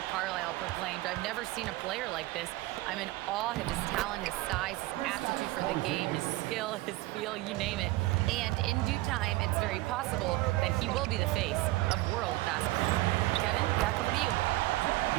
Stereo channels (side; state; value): left; quieter; 19.1 dB